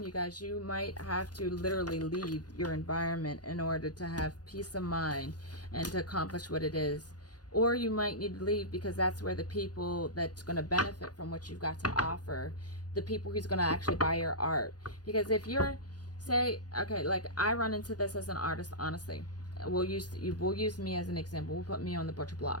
you guys, you might have to literally leave your environment in order to have peace of mind and to accomplish what it is. Or you might need to leave because that's where the people that's going to benefit from what you've got to offer, the people who's going to actually buy your art. Because if you're, say, okay, like I run into this as an artist, honestly. We'll use me as an example. We'll put me on the butcher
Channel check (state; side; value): late; right; 0.69 ms